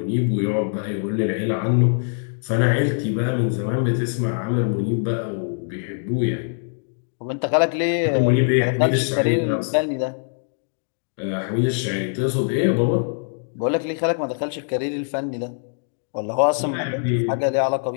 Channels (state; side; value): silent; right; digital silence